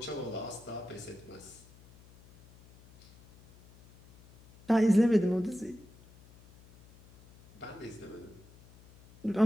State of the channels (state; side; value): noise; left; hum, 24 dB below the sound